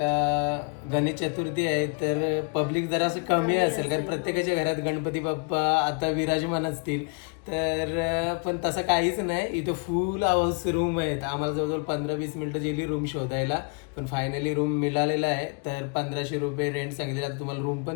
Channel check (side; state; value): right; quieter; 34.0 dB